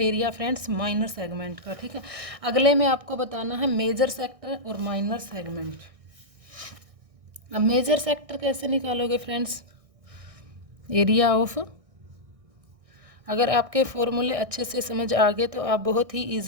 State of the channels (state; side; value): late; left; 1.6 ms